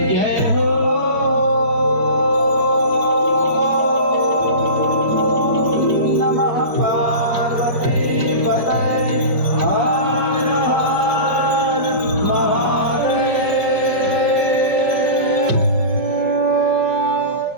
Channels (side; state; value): left; late; 5.0 ms